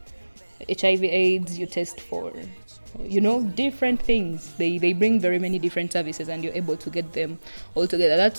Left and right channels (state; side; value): inverted; both; correlation -1.00